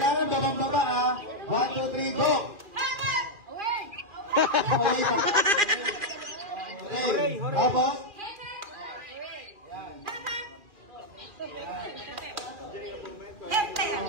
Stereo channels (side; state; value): left; late; 2.4 ms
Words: babang-baba ha. 1, 2, 3, go! Hooray. Tapos?